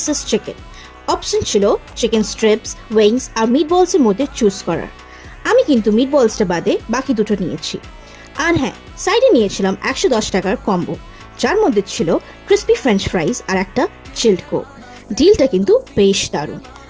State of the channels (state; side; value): identical; both; correlation 1.00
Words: চিকেন। অপশন ছিল চিকেন স্ট্রিপস, উইংস আর মিট বলসের মধ্যে চুজ করার। আমি কিন্তু মিট বলসটা বাদে বাকি দুটো নিয়েছি। আর হ্যাঁ, সাইডে নিয়েছিলাম 110 টাকার কম্বো, যার মধ্যে ছিল ক্রিস্পি ফ্রেঞ্চ ফ্রাইজ আর একটা চিল্ড কোক। ডিলটা কিন্তু বেশ দারুণ।